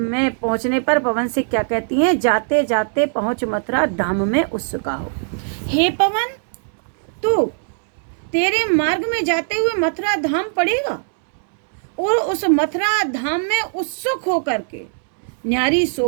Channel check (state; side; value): silent; left; digital silence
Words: पहुंचने पर पवन से क्या कहती हैं? जाते जाते पहुंच मथुरा धाम में उत्सुका हो। हे पवन, तू तेरे मार्ग में जाते हुए मथुरा धाम पड़ेगा और उस मथुरा धाम में उत्सुक होकर के न्यारी